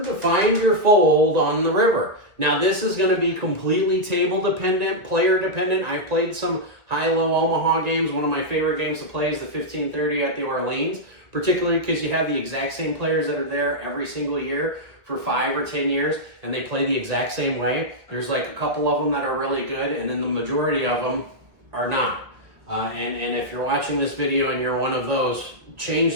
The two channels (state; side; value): late; left; 1.7 ms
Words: to find your fold on the river. Now this is going to be completely table dependent, player dependent. I've played some high-low Omaha games. One of my favorite games to play is the 1530 at the Orleans, particularly because you have the exact same players that are there every single year for 5 or 10 years, and they play the exact same way. There's like a couple of them that are really good, and then the majority of them are not. And if you're watching this video and you're one of those, change